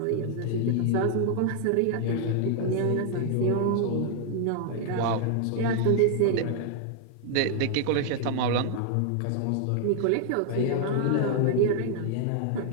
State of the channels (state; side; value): different; both; correlation 0.00